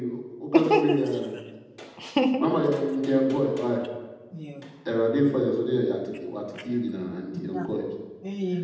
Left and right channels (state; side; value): identical; both; correlation 1.00